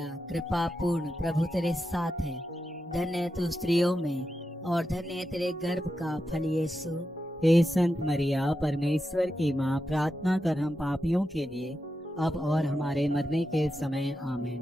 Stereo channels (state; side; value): normal; both; correlation 0.88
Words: कृपा पूर्ण, प्रभु तेरे साथ है, धन्य है तू स्त्रियों में और धन्य है तेरे गर्भ का फल यीशु। हे संत मरिया, परमेश्वर की माँ, प्रार्थना कर हम पापियों के लिए अब और हमारे मरने के समय।